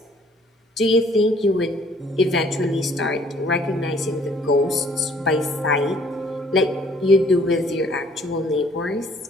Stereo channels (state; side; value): normal; both; correlation 0.59